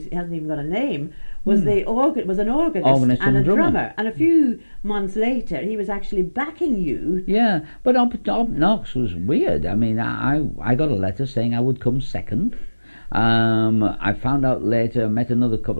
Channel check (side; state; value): both; inverted; correlation -1.00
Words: hasn't even got a name, was an organist and a drummer. And a few months later, he was actually backing you. Yeah, but Up Knox was weird. I mean, I got a letter saying I would come second. I found out later, I met another